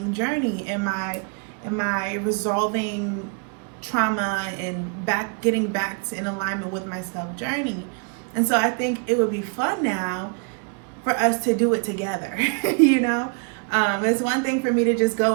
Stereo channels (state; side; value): quieter; left; 38.3 dB